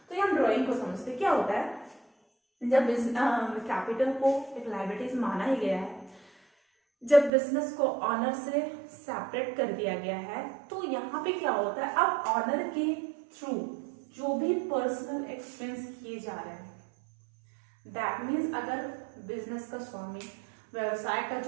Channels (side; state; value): left; drops out; at 7.3 s